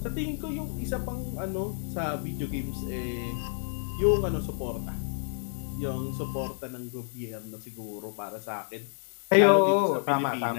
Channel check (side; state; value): right; silent; digital silence